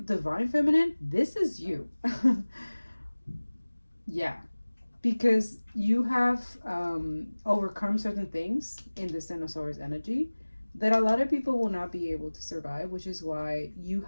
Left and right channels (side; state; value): both; inverted; correlation -1.00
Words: feminine, this is you. Yeah, because you have overcome certain things in the Ten of Swords energy that a lot of people will not be able to survive, which is why you